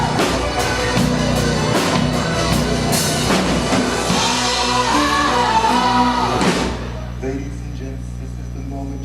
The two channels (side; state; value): both; identical; correlation 1.00